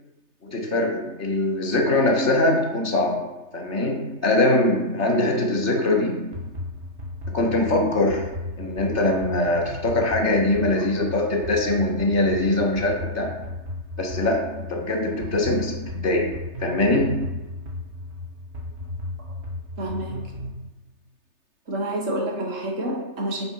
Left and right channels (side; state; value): left; late; 3.3 ms